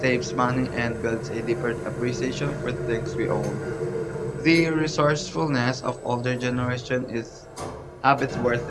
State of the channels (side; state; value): both; identical; correlation 1.00